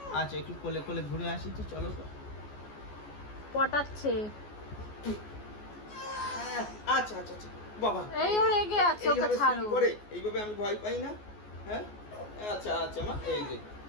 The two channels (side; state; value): right; late; 14 ms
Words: আচ্ছা একটু কোলে কোলে ঘুরে আসি তো, চলো তো। পটাচ্ছে। আচ্ছা আচ্ছা আচ্ছা বাবা, এই ও রেগে আছে, ওকে এইভাবে ছাড়ো। swing করে এইভাবে আমি ভয় পাই না। হ্যাঁ আচ্ছা আচ্ছা মা,